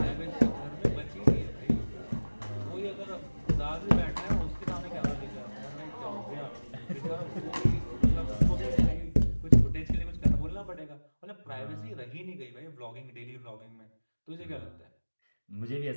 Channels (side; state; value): both; inverted; correlation -1.00